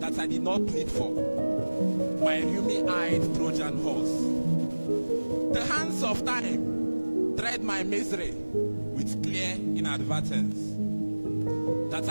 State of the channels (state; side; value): inverted; both; correlation -1.00